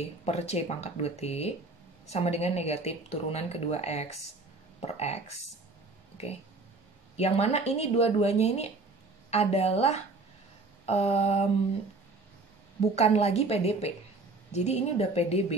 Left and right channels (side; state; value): left; quieter; 3.5 dB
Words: per C pangkat 2T sama dengan negatif turunan kedua X per X. Oke. Yang mana ini dua-duanya ini adalah bukan lagi PDP. Jadi ini udah